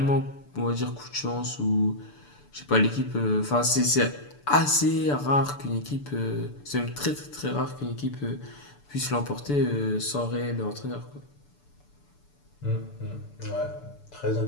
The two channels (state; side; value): late; right; 6.9 ms